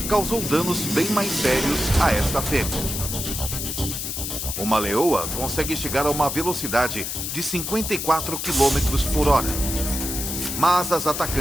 causou danos bem mais sérios a esta fêmea. Uma leoa consegue chegar a uma velocidade de 54 km por hora. Mas as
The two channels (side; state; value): left; noise; hiss, 4 dB below the sound